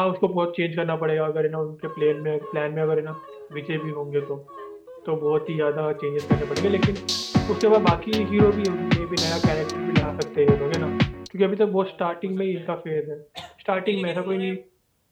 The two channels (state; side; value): identical; both; correlation 1.00